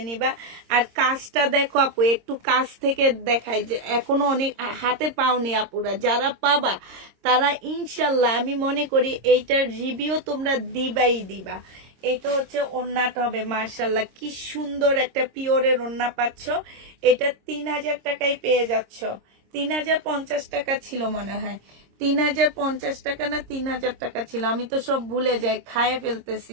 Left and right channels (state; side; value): late; left; 26 ms